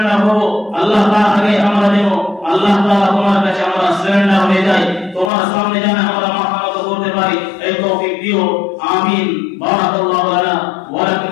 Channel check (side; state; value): right; drops out; at 5.3 s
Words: হব, আল্লাহ তাআলা আগে আমরা যেন আল্লাহ তাআলা তোমার কাছে আমরা সারেন্ডার হয়ে যাই, তোমার সামনে যেন আমরা মাথা নত করতে পারি, এই তৌফিক দিও। আমিন। বারাকাল্লাহু লানা ওয়া লাকুম